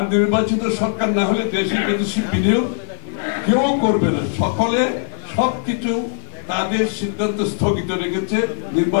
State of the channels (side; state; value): right; silent; digital silence